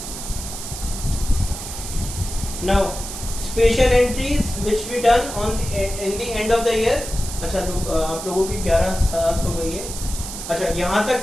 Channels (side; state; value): right; noise; hiss, 9 dB below the sound